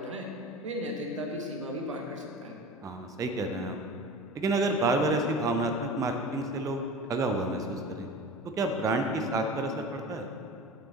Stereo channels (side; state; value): both; normal; correlation 0.35